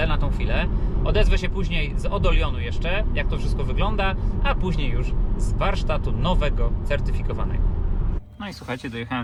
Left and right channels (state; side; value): identical; both; correlation 1.00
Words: na tą chwilę. Odezwę się później z Odolionu jeszcze, jak to wszystko wygląda, a później już z warsztatu nowego, certyfikowanego. No i słuchajcie,